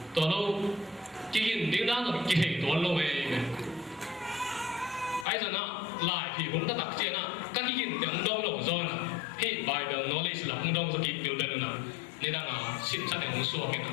to lo ki hin ding da no ki hei to lo me ai giờ na lại thì cũng đã đặc chia na các cái hiện tượng đông lộng do na hi bài the knowledge là không đông so kịp biểu đơn na nên là xin sát để không xua cái na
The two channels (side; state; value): right; drops out; at 5.2 s